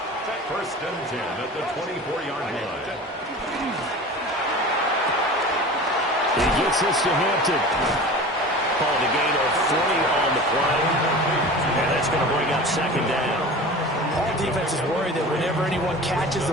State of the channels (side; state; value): both; normal; correlation 0.36